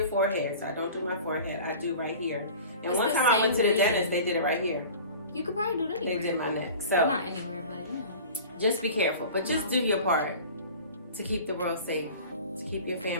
forehead. So I don't do my forehead. I do right here. And It's one the time I went to the same dentist, they did it right here. You could probably do it anywhere. They did my neck. So Well, not anywhere, but you know. just be careful. But just No. do your part to keep the world safe, to keep your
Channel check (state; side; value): inverted; both; correlation -0.40